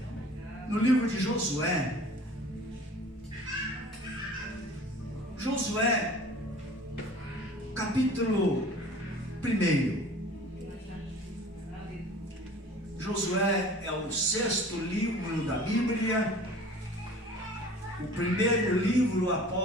no livro de Josué. Josué, capítulo 1. Josué é o 6º livro da Bíblia, o primeiro livro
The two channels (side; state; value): both; normal; correlation 0.45